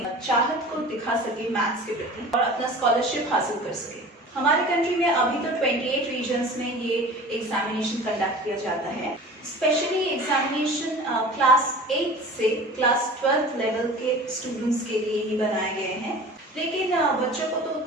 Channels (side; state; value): both; normal; correlation 0.40